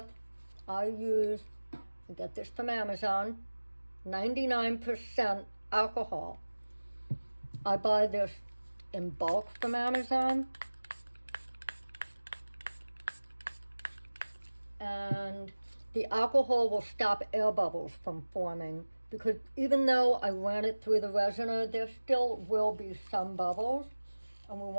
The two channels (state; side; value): inverted; both; correlation -1.00